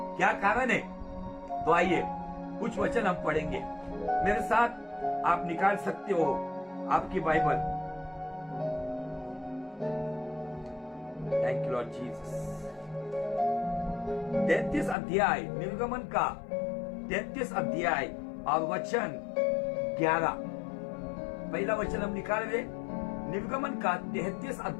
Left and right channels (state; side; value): drops out; right; at 15.0 s